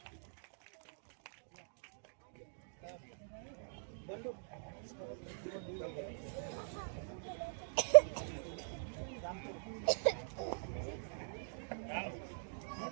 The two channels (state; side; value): silent; left; digital silence